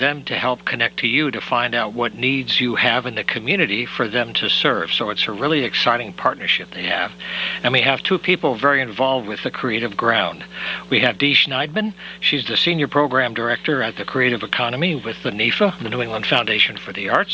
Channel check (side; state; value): both; identical; correlation 1.00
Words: to help connect to you to find out what needs you have in the community for them to serve. So it's a really exciting partnership they have. And we have two people very involved with the Creative Ground. We have Dee Schneidman. She's the Senior Program Director at the Creative Economy with the NEFA, the New England Foundation for the